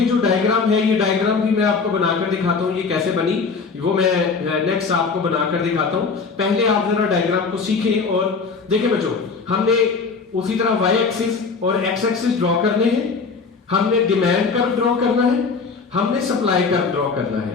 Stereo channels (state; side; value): quieter; right; 4.9 dB